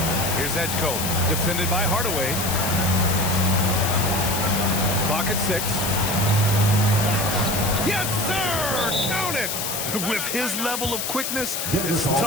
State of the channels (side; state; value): left; noise; hiss, 2 dB below the sound